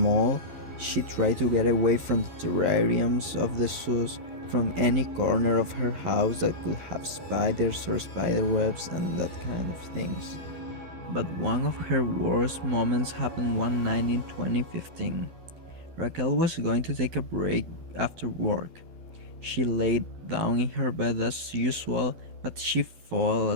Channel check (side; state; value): left; late; 12 ms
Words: she tried to get away from the terrariums of the zoos, from any corner of her house that could have spiders or spider webs and that kind of things. But one of her worst moments happened one night in 2015. Raquel was going to take a break after work. She laid down in her bed as usual, but she fell